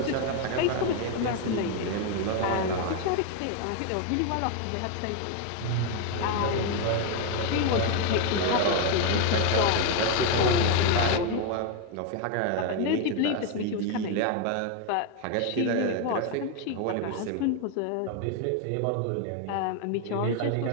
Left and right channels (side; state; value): both; different; correlation 0.01